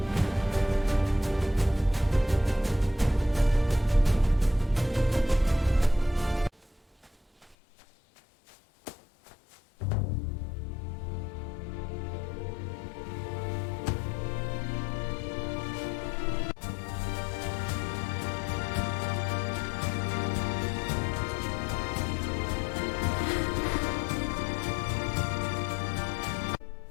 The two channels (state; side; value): drops out; right; at 7.6 s